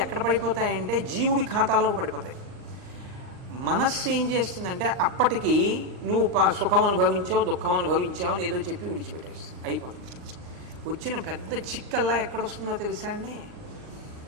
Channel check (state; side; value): late; left; 39 ms